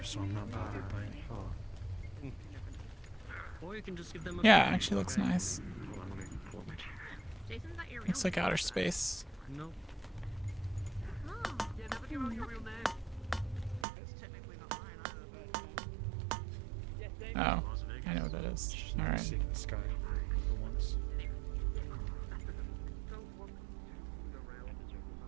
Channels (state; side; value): drops out; left; at 13.9 s